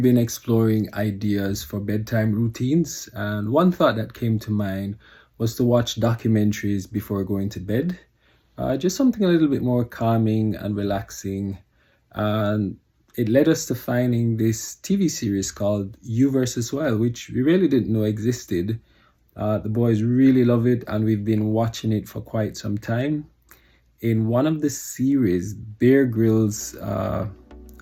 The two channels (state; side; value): identical; both; correlation 1.00